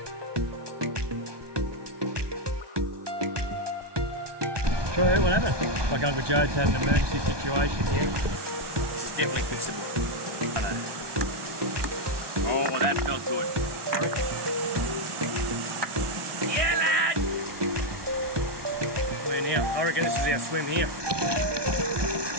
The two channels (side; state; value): left; late; 1.2 ms